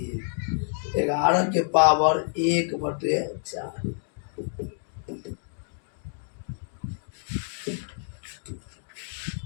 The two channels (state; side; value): silent; right; digital silence